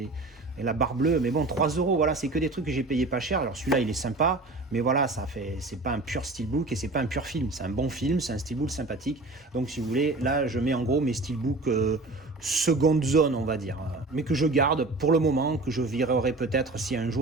la barre bleue, mais bon, 3 €, voilà, c'est que des trucs que j'ai payé pas cher. Alors celui-là, il est sympa, mais voilà, c'est pas un pur steelbook et c'est pas un pur film. C'est un bon film, c'est un steelbook sympathique. Donc si vous voulez, là, je mets en gros mes steelbooks seconde zone, on va dire, mais que je garde pour le moment, que je virerai peut-être si un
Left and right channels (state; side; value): quieter; left; 3.2 dB